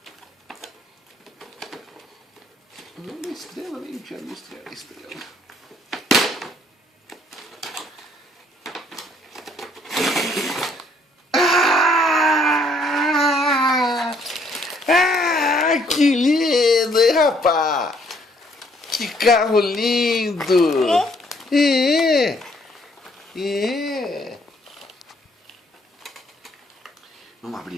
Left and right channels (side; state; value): both; normal; correlation 0.65